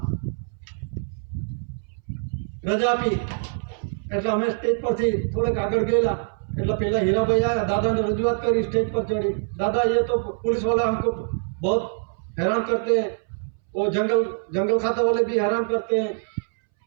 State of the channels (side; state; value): left; silent; 62 dB below the other